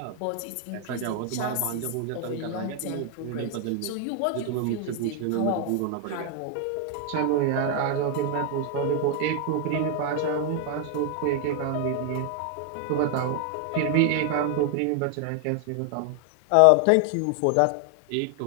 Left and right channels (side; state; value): both; different; correlation 0.00